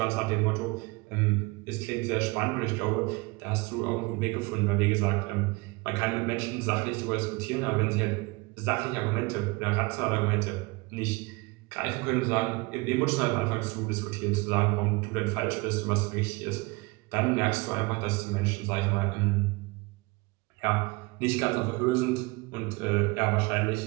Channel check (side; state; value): left; quieter; 25.6 dB